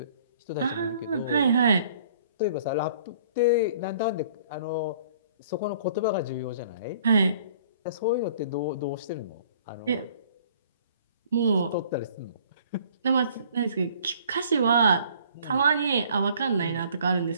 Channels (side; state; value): both; inverted; correlation -0.55